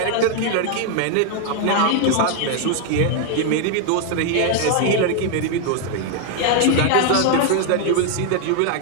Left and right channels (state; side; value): different; both; correlation 0.00